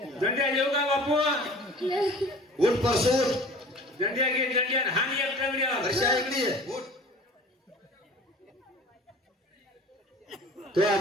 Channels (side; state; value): both; normal; correlation 0.44